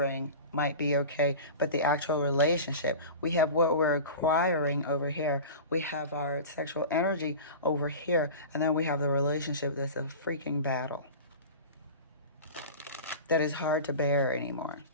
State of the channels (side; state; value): both; inverted; correlation -0.33